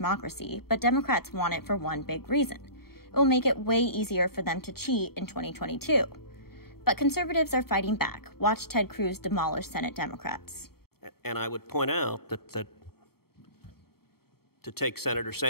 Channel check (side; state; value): right; late; 0.95 ms